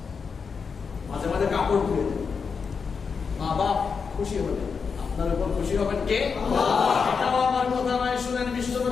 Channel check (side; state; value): right; quieter; 5.6 dB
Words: মাঝে মাঝে কাপড় ধুয়ে দেন, মা বাপ খুশি হবেন। আপনার উপর খুশি হবেন কে? আল্লাহ। এটাও আমার কথা নয়, শুনেন